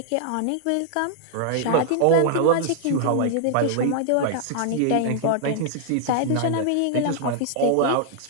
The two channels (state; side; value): different; both; correlation -0.01